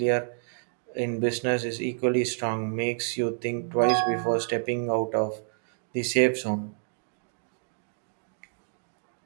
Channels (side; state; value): left; silent; digital silence